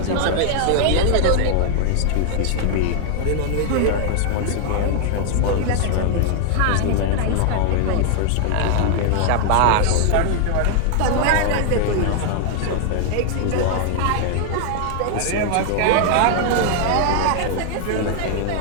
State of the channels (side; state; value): both; different; correlation 0.00